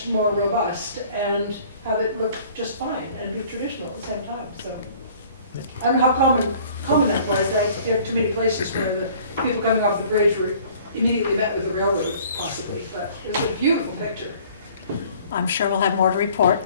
more robust and have it look just fine and be traditional at the same time. So I don't know how common that was. There are too many places where the people coming off the bridge were immediately met with the railroad, possibly. But it's a beautiful picture. I'm sure we'll have more to report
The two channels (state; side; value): inverted; both; correlation -0.53